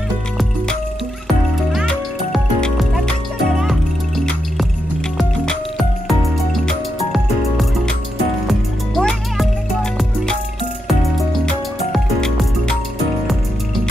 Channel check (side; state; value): both; normal; correlation 0.84